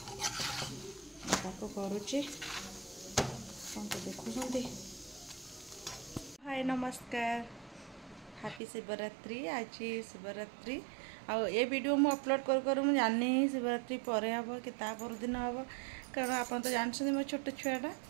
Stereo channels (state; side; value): drops out; left; at 8.6 s